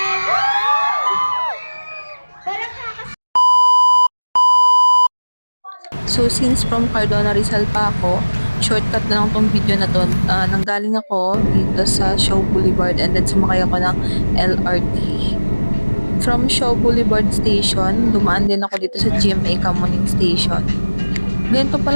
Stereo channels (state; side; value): inverted; both; correlation -1.00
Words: Parang So since from Cardona Rizal pa ako, shortcut na lang tong video na to. Nanggaling ako dito sa Shaw Boulevard and then sumakay ako ng LRT. From Shaw Boulevard Station, dumaan din ako dito sa GMA Kamuning Station. Ganito